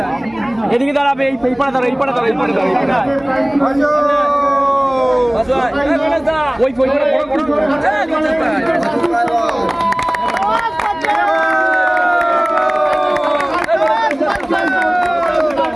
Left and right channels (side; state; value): right; noise; hum, 28 dB below the sound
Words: এদিকে দাঁড়াবে, এই পাড়া দাঁড়া, এই পাড়া দাঁড়া, এই পাড়া দাঁড়া, ওই